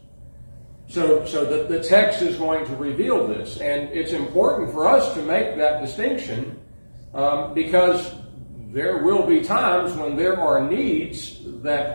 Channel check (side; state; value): both; inverted; correlation -1.00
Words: So the text is going to reveal this, and it's important for us to make that distinction because there will be times when there are needs